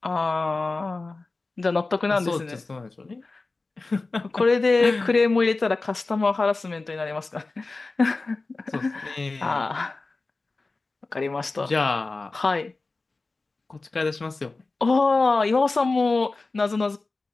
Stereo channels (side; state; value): right; quieter; 3.5 dB